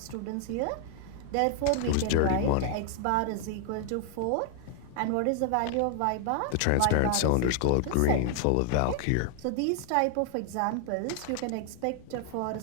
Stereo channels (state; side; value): different; both; correlation 0.00